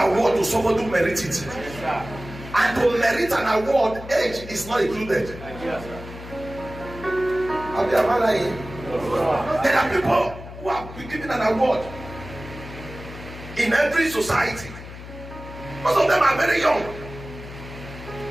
award to someone who merits it. And to merit an award, age is not included. There are people who have been given an award in every society. Most of them are very young.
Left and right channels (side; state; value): left; noise; hum, 13 dB below the sound